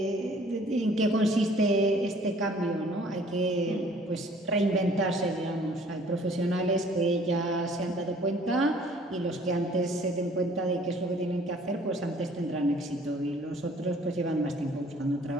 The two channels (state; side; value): normal; both; correlation 0.56